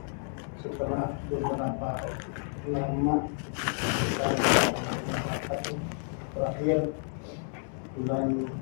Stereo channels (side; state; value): right; silent; 55 dB below the other